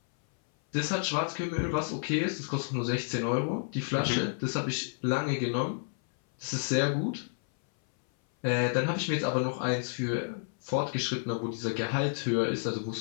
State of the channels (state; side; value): silent; right; 58 dB below the other